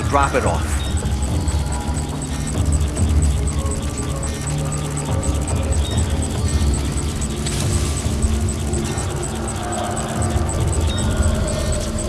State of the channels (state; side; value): identical; both; correlation 1.00